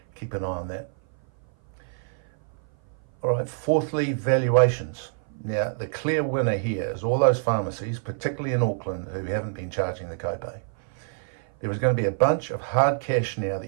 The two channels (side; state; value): left; silent; 56 dB below the other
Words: Keep an eye on that. All right, fourthly, valuations. Now, the clear winner here is all those pharmacies, particularly in Auckland, who haven't been charging the copay. There is going to be a bunch of hard cash now